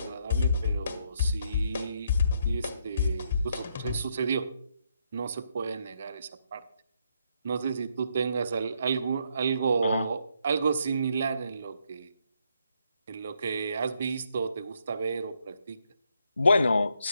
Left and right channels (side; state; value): both; inverted; correlation -0.75